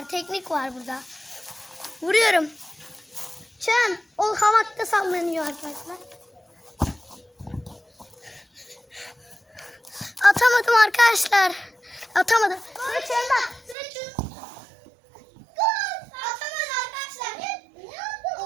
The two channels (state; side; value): drops out; left; at 13.8 s